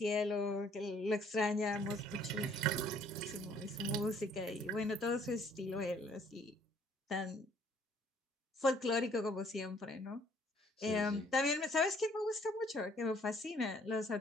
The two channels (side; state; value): both; normal; correlation 0.61